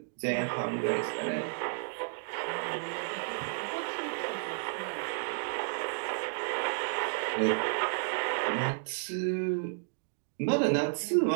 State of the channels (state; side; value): silent; left; digital silence